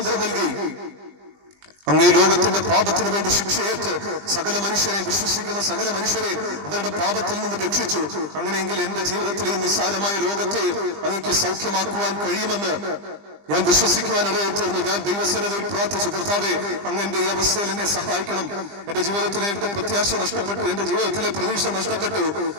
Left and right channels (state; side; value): late; left; 20 ms